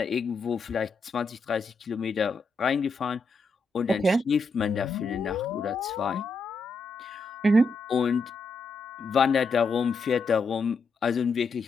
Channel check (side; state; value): right; quieter; 3.6 dB